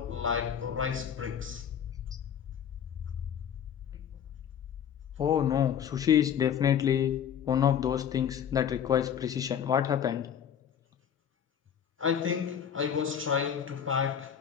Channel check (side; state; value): right; quieter; 8.6 dB